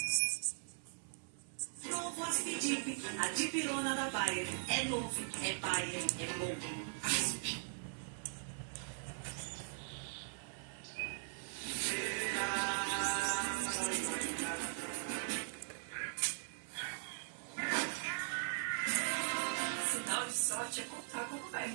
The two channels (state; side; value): silent; left; 51 dB below the other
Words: Novo Aspidip, a dipirona da Bayer. É novo, é Bayer, é bom. Asp. Sinal de sorte é contar como